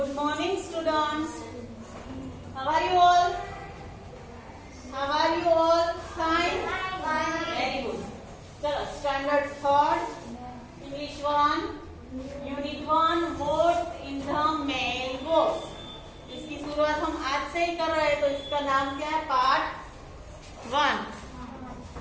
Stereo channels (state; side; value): identical; both; correlation 1.00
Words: morning, students. How are you all? How are you all? Fine? Very good. चलो, standard third, English 1, Unit 1, words in the mailbox. इसकी शुरुआत हम आज से ही कर रहे हैं, तो इसका नाम क्या है? पार्ट 1.